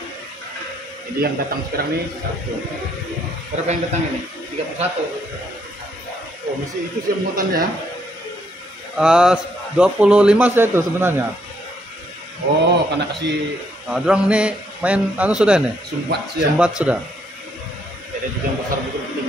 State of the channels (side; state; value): both; normal; correlation 0.72